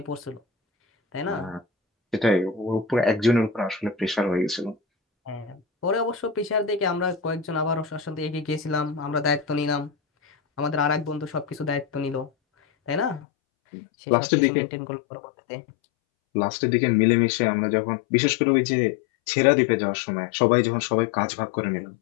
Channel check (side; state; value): right; drops out; at 13.2 s